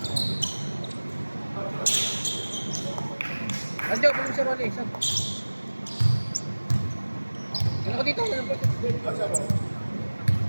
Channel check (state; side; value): inverted; both; correlation -1.00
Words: Anjo, pwede si Rolly. Saan? Ano ko dito?